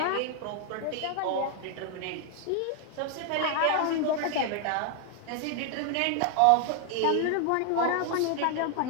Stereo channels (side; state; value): both; different; correlation 0.00